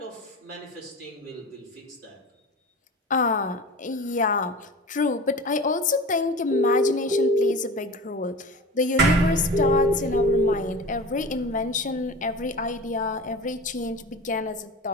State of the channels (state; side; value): normal; both; correlation 0.34